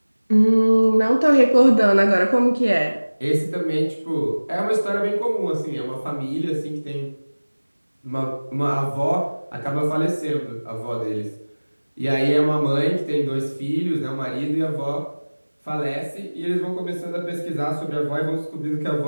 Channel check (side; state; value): both; inverted; correlation -1.00